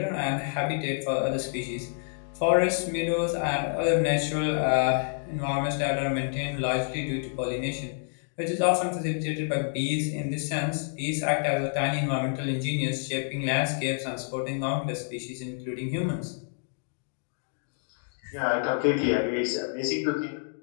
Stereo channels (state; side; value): silent; right; digital silence